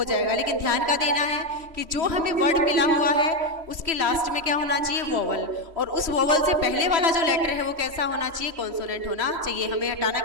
जाएगा। लेकिन ध्यान का देना है कि जो हमें वर्ड मिला हुआ है उसके लास्ट में क्या होना चाहिए, वोवल, और उस वोवल से पहले वाला जो लेटर है वो कैसा होना चाहिए, कॉन्सोनेंट होना चाहिए। हमें हटाना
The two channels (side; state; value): left; late; 3.1 ms